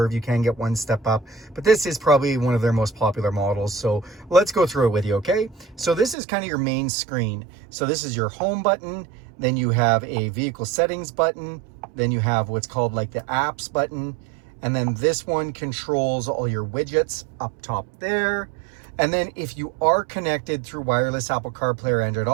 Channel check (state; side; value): drops out; left; at 6.2 s